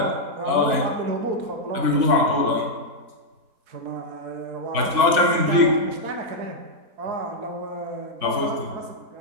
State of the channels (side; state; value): left; late; 3.6 ms